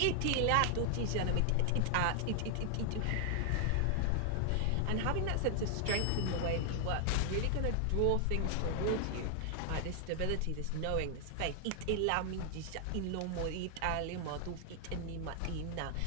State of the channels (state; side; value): different; both; correlation 0.00